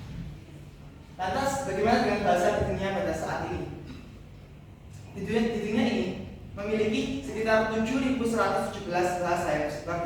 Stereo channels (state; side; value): identical; both; correlation 1.00